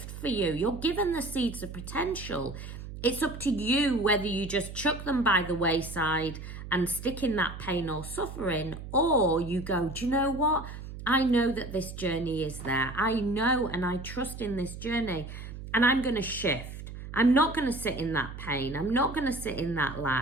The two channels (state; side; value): noise; right; hum, 11 dB below the sound